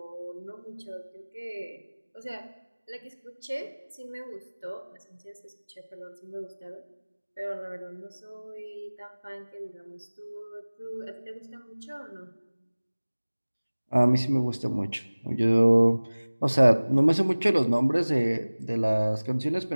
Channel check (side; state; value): both; inverted; correlation -1.00